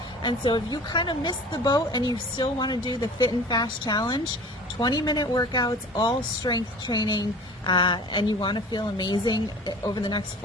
And so if you kind of missed the boat and you still want to do the Fit and Fast challenge, 20-minute workouts, all strength training, and you want to feel amazing over the next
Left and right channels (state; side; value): normal; both; correlation 0.42